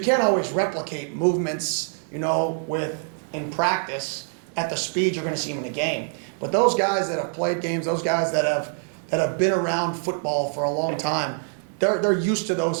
always replicate movements, in practice at the speed you're going to see them in a game. But those guys that have played games, those guys that have been around football for a long time, they're used to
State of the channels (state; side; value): silent; left; 58 dB below the other